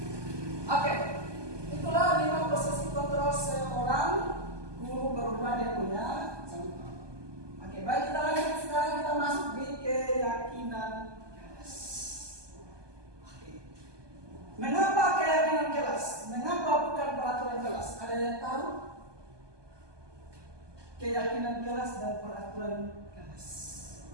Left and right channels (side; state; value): left; late; 1.2 ms